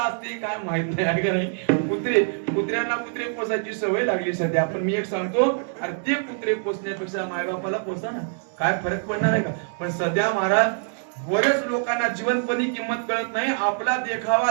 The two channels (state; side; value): silent; left; digital silence